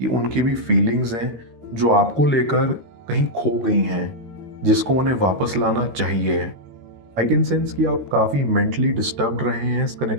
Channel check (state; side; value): late; left; 13 ms